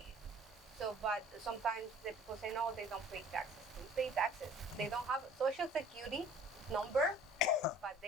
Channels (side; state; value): both; normal; correlation 0.51